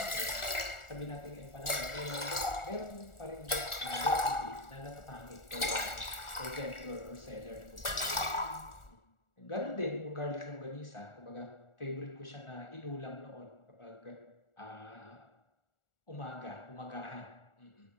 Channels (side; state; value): right; late; 1.4 ms